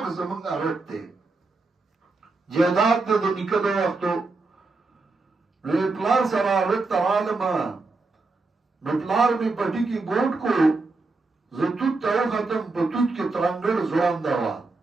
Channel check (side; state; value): left; quieter; 3.6 dB